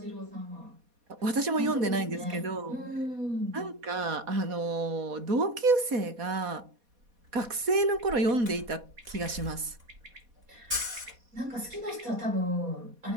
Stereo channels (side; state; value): left; late; 4.2 ms